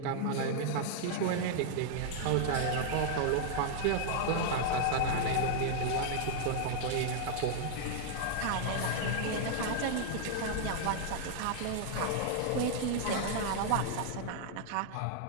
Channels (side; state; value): both; different; correlation -0.01